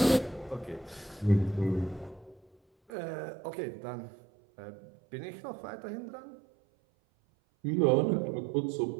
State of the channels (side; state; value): left; drops out; at 2.9 s